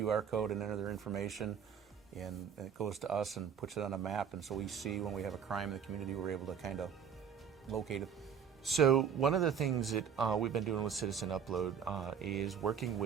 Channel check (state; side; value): quieter; left; 7.6 dB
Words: code and enter their information, and it goes to us and puts it on a map, and so we see when we have a crime in the community, we're able to kind of locate it. So one of the things that we've been doing with Citizen Upload is working